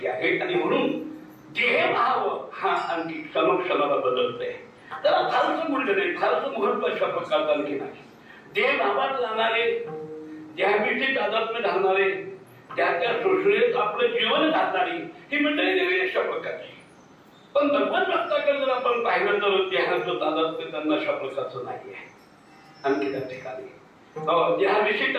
आहे. आणि म्हणून देहभाव हा आणखी क्षणोक्षणाला बदलतोय. त्याला फारसं बोललं नाही, फारसं महत्व अशा प्रकारचं आणखी नाही. देहभावात जाणारे, देहाविषयी तादात्म्य घालणारे, त्या शोषणेत आपलं जीवन घालणारी ही मंडळी देवी अशा प्रकारची. पण भगवत भक्ताकडे जर आपण पाहिलं तर देहाचं तादात्म्य त्यांना अशा प्रकारचं नाही आहे. आणखी त्या ठिकाणी देहाविषयी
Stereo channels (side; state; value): both; identical; correlation 1.00